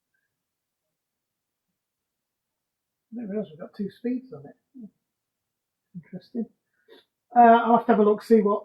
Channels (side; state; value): both; identical; correlation 1.00